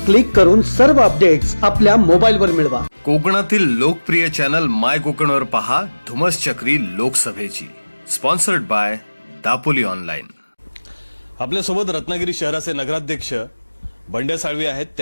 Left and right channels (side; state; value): both; inverted; correlation -1.00